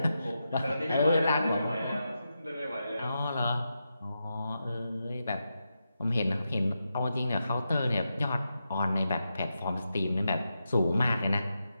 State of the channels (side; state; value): both; inverted; correlation -0.87